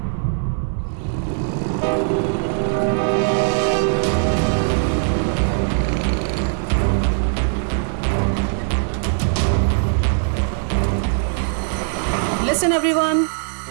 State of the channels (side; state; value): left; silent; 58 dB below the other